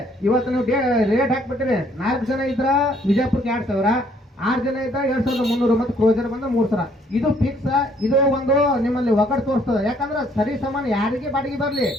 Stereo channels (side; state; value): both; normal; correlation 0.64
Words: ಇವತ್ತು ನೀವು ರೇಟ್ ಹಾಕ್ಬಿಟ್ಟಿರಿ. 4 ಜನ ಇದ್ರ ವಿಜಯಪುರಕ್ಕೆ 2000, 6 ಜನ ಇದ್ದ 2300 ಮತ್ತು ಕ್ರೋಜರ್ ಬಂದ 3000. ಇದು ಫಿಕ್ಸ್. ಇದು ಒಂದು ನಿಮ್ಮಲ್ಲಿ ಒಗಟ್ ತೋರಿಸ್ತದೆ. ಯಾಕಂದ್ರೆ ಸರಿ ಸಮಾನ ಯಾರಿಗೆ ಬಾಡಿಗೆ ಬರ್ಲಿ